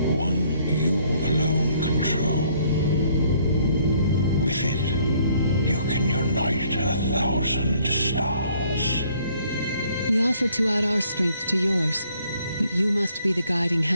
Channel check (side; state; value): both; inverted; correlation -0.64